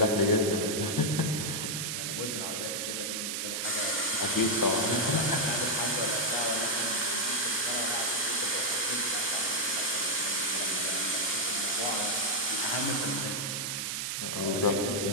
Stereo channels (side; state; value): right; noise; hiss, 2 dB below the sound